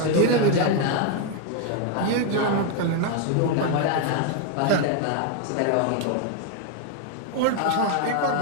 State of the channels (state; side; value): different; both; correlation 0.01